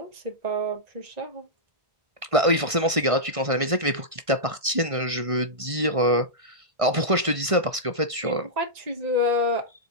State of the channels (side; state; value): left; late; 1.5 ms